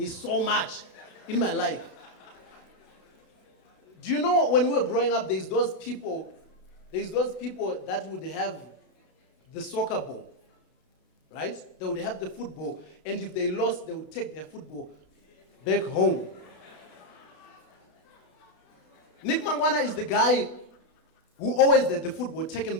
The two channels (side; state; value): right; late; 32 ms